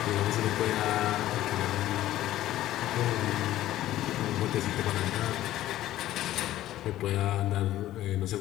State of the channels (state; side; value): quieter; right; 14.2 dB